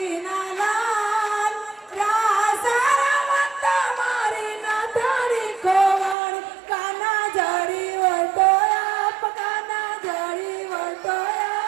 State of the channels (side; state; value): left; drops out; at 6.2 s